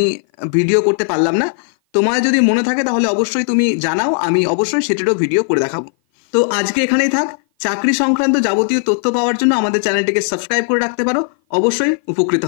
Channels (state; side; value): silent; right; 56 dB below the other